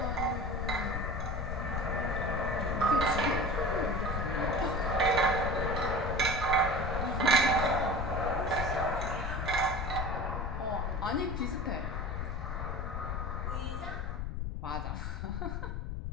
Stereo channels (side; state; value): left; noise; rumble, 3 dB below the sound